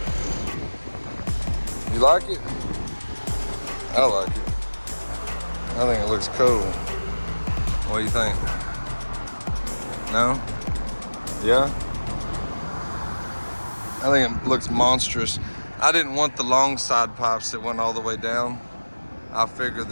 You like it? I like it. I think it looks cool. What do you think? No? Yeah? I think it looks monstrous. I didn't want the long side pipes that went all the way down. I figured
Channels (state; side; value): inverted; both; correlation -1.00